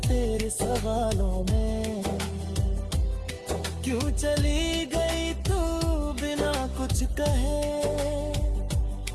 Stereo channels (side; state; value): both; identical; correlation 1.00